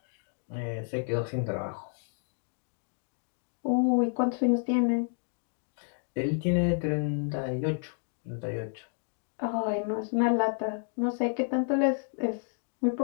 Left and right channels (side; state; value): right; silent; 57 dB below the other